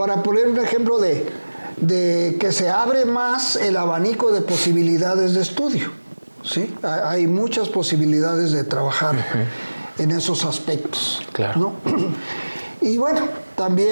poner un ejemplo de que se abre más el abanico de posibilidades de estudio, ¿sí? Hay muchas posibilidades de trabajar en esos aspectos, claro, ¿no? Y bueno,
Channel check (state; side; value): inverted; both; correlation -1.00